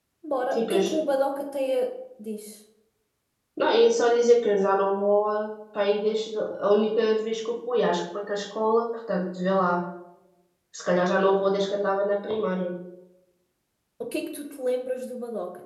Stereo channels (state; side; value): identical; both; correlation 1.00